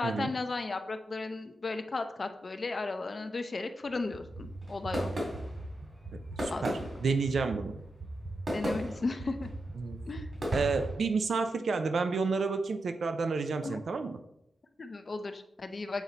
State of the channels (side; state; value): both; normal; correlation 0.87